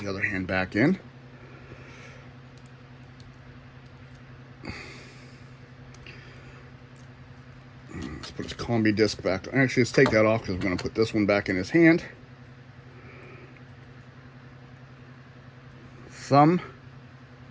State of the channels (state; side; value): identical; both; correlation 1.00